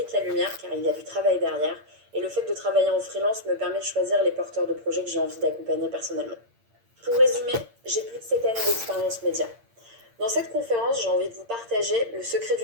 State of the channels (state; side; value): late; left; 8.7 ms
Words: la lumière car il y a du travail derrière Et le fait de travailler en freelance me permet de choisir les porteurs de projets que j'ai envie d'accompagner personnellement. Pour résumer, j'ai plus de 7 années d'expérience média. Dans cette conférence, j'ai envie de vous partager le secret